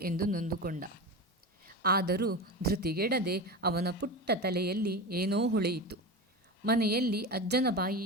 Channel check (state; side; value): normal; both; correlation 0.24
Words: ಎಂದು ನೊಂದುಕೊಂಡ. ಆದರೂ ಧೃತಿಗೆಡದೆ ಅವನ ಪುಟ್ಟ ತಲೆಯಲ್ಲಿ ಏನೋ ಹೊಳೆಯಿತು. ಮನೆಯಲ್ಲಿ ಅಜ್ಜನ